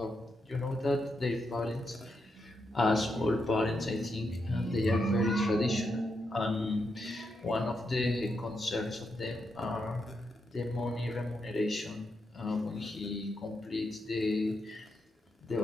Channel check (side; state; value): both; normal; correlation 0.83